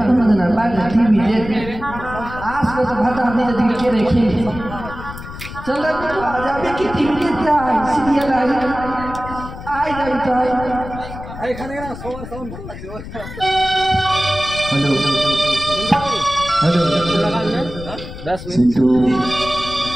কোনদিন বাইরে টিভি দেখে আসলে তো ভাতা দিকে দিকে কে রেখে চল যাবে কি টিভি দেখতে আয় সিরিয়াল আয় যাবি তো আয় এখানে না সবার সাউন্ড ভালো লাগছে হ্যালো হ্যালো 10 মিনিট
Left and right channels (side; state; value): left; noise; rumble, 12 dB below the sound